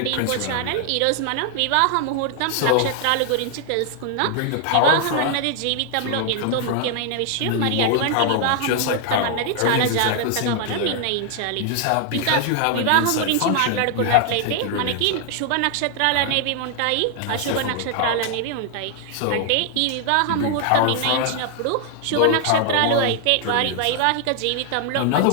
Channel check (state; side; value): different; both; correlation 0.00